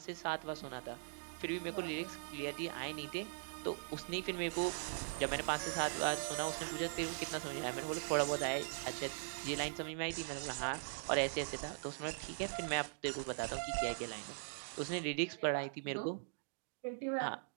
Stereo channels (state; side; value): silent; left; digital silence